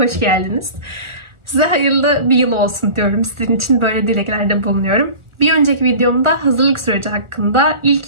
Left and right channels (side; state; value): left; late; 1.4 ms